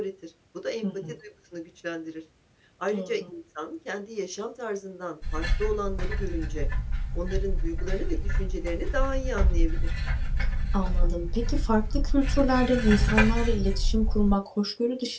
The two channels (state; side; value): identical; both; correlation 1.00